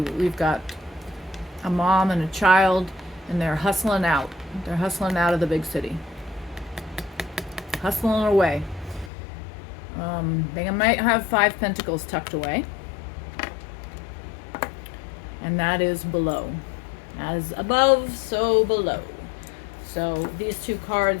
got a mom and a child, and they're hustling out. They're hustling out of the big city. Hustling away. They might have 5 pentacles tucked away. And that is below. As above, so below. So these two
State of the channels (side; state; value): right; drops out; at 9.1 s